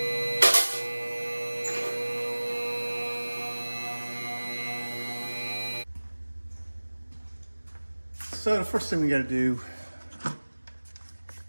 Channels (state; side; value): inverted; both; correlation -1.00